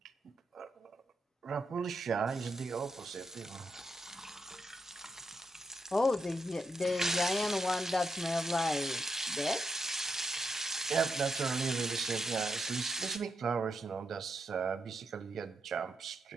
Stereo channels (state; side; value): normal; both; correlation 0.82